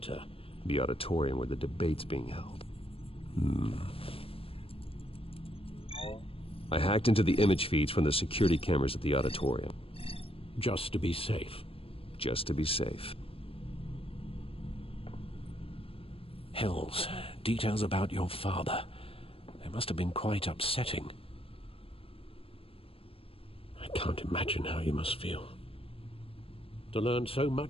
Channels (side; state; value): right; late; 0.27 ms